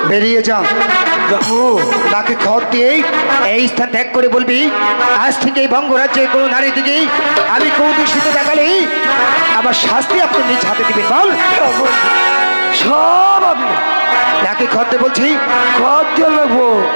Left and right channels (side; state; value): both; inverted; correlation -1.00